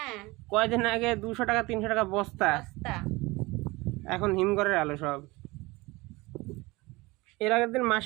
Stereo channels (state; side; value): quieter; left; 22.4 dB